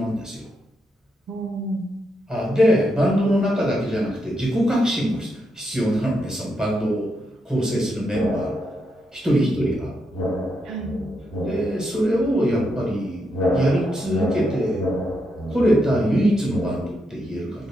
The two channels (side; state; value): both; normal; correlation 0.82